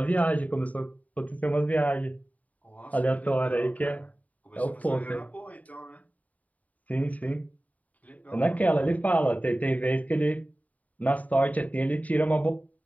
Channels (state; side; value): late; right; 0.071 ms